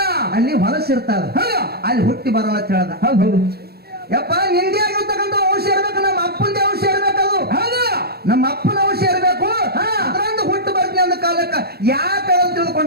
ಅಲ್ಲಿ ಹೊಲಸಿರ್ತದ ಅಲ್ಲಿ ಹುಟ್ಟಿ ಬರೋಣ ಅಂತ ಹೇಳ್ದ ಹೌದು ಯಪ್ಪ ನಿಂದೆ ಆಗಿರ್ತಕ್ಕಂಥ ಔಷಧ ಇರ್ಬೇಕು ನಮ್ಮ ಅಪ್ಪಂದೇ ಔಷಧ ಇರ್ಬೇಕದು ಹೌದು ನಮ್ಮ ಅಪ್ಪನ ಔಷಧ ಇರ್ಬೇಕು ಅದ್ರಂದು ಹುಟ್ಟು ಬರ್ತೀನಿ ಅಂದ ಕಾಲಕ್ಕ ಯಾಕೆ ಅಂತ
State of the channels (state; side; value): late; left; 0.46 ms